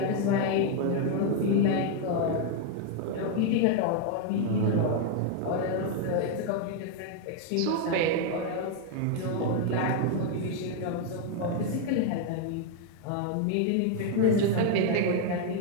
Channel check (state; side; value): different; both; correlation 0.00